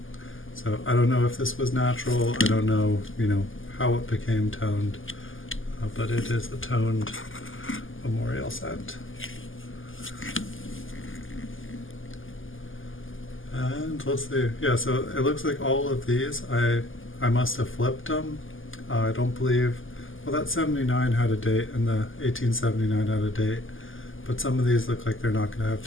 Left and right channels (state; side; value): late; right; 0.58 ms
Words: So I don't know if this was natural. I don't know, you know, how it became toned, but it is a toned memorial cent. And let's see. Yeah, so it looks like all of these I must have flipped them. I don't believe. Well, that 79 had a date, and the 1879 had a date, but some of these look like they're not going to have